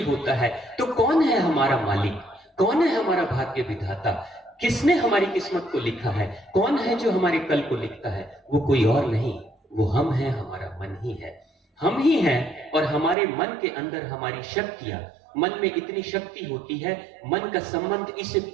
होता है। तो कौन है हमारा मालिक? कौन है हमारा भाग्य विधाता? किसने हमारी किस्मत को लिखा है? कौन है जो हमारे कल को लिखता है? वो कोई और नहीं, वो हम हैं, हमारा मन ही है। हम ही हैं। और हमारे मन के अंदर हमारी शक्तियां, मन में इतनी शक्ति होती है, मन का संबंध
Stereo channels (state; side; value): drops out; left; at 13.2 s